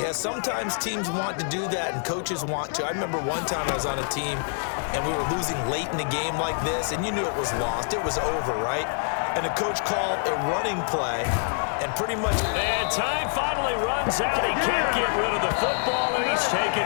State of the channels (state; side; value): silent; right; digital silence